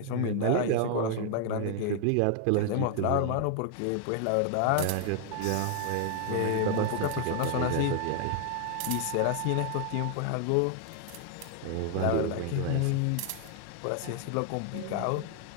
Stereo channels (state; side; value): different; both; correlation 0.00